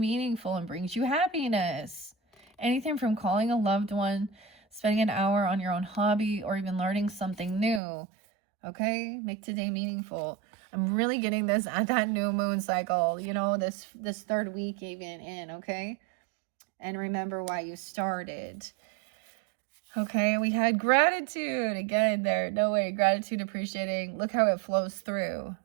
and brings you happiness. Anything from calling a loved one, spending an hour on your own hobby, or even learning something new. Okay, make today meaningful. I'm really getting this at that new moon cycle, you know, this third week even in, okay? And remember why you started. Okay, we had gratitude again there. No way, gratitude, appreciating. Look how it flows through.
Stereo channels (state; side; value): drops out; left; at 7.8 s